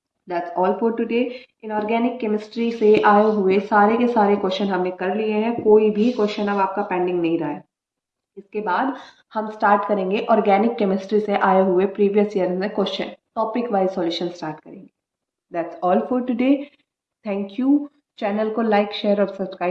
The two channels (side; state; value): both; identical; correlation 1.00